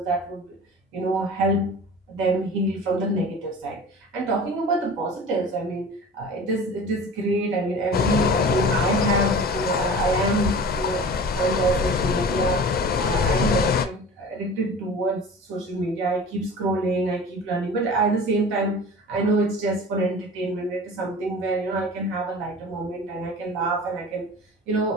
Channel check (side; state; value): both; normal; correlation 0.38